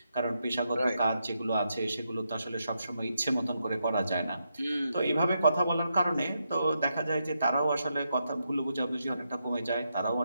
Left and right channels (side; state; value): both; inverted; correlation -0.82